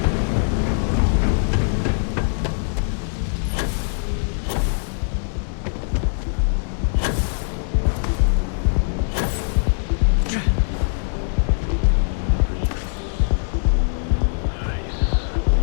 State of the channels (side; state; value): right; silent; digital silence